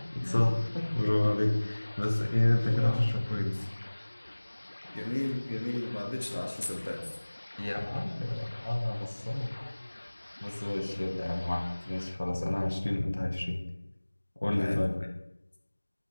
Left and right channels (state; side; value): inverted; both; correlation -1.00